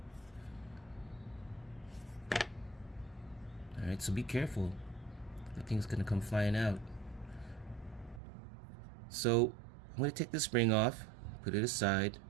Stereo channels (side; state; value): left; drops out; at 8.2 s